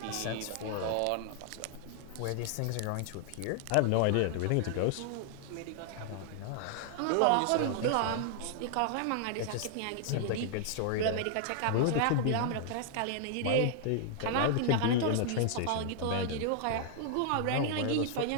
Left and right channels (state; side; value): different; both; correlation -0.01